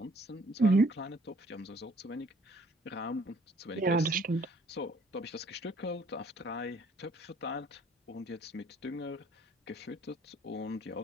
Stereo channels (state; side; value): normal; both; correlation 0.59